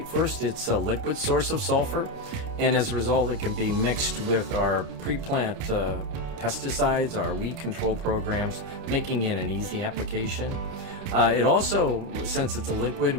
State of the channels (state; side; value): late; left; 29 ms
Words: first, it's a liquid source of sulfur, and as a result it can be mixed with our pre-plant pesticides, our weed control programs, making it an easy application. It also, since it's a liquid,